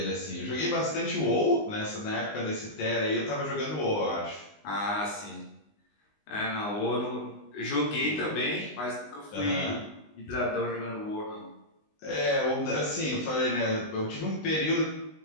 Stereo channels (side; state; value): right; late; 19 ms